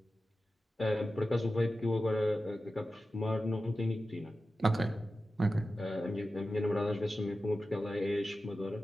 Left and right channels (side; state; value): both; normal; correlation 0.93